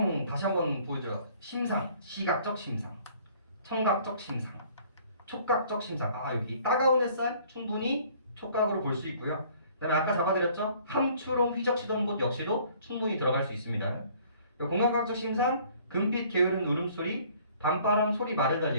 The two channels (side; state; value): both; inverted; correlation -0.57